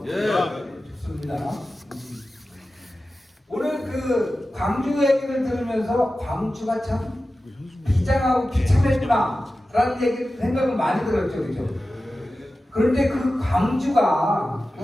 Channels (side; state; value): both; normal; correlation 0.94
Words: 예. 좋습니다. 오늘 그 광주 얘기를 들으면서 광주가 참 비장하고 비참했구나라는 생각은 많이 들었죠, 그죠? 그런데 그 광주가